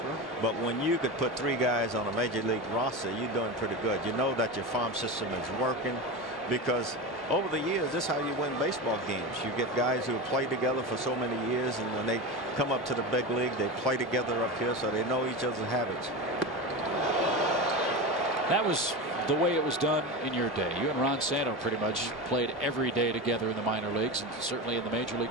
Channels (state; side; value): normal; both; correlation 0.23